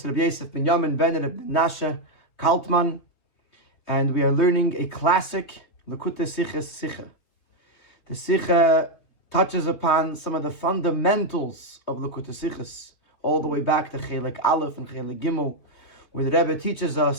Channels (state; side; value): late; right; 3.2 ms